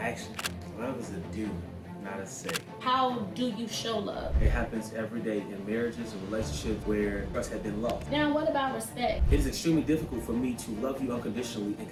Love is a do, not a say. How do you show love? It happens every day in marriages and relationships where trust has been lost. Now, what about respect? It is extremely difficult for me to love you unconditionally and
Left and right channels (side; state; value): both; identical; correlation 1.00